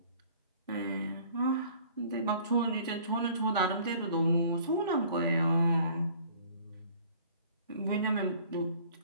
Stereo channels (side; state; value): both; inverted; correlation -0.53